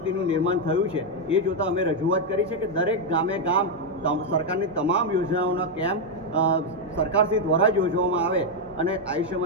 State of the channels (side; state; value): both; normal; correlation 0.02